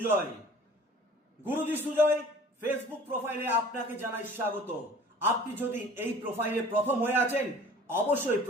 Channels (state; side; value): normal; both; correlation 0.47